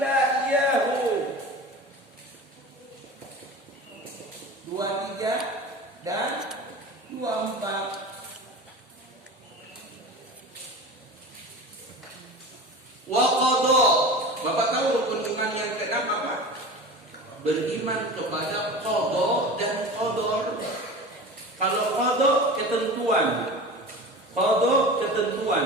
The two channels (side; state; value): both; normal; correlation 0.34